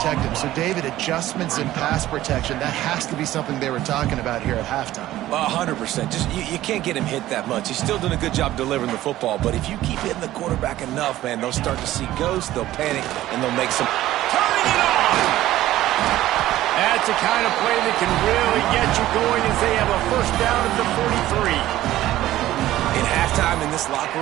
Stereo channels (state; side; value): quieter; left; 14.7 dB